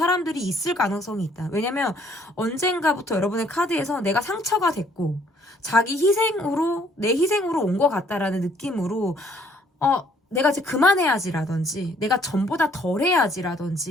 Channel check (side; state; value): both; normal; correlation 0.63